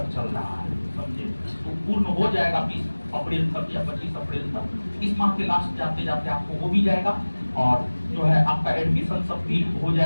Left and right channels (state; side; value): inverted; both; correlation -1.00